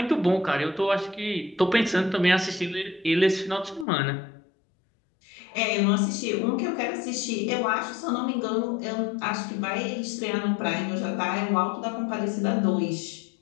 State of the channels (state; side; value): drops out; right; at 3.9 s